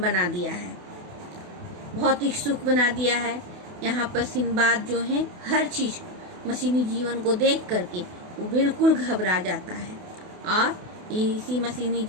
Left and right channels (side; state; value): left; late; 28 ms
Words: दिया है, भौतिक सुख बना दिया है। यहाँ पर सिंबाद जो है हर चीज़ मशीनी जीवन को देख करके वो बिल्कुल घबरा जाता है और इसी मशीनी